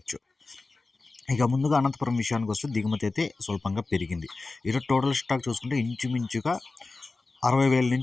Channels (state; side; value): quieter; right; 3.6 dB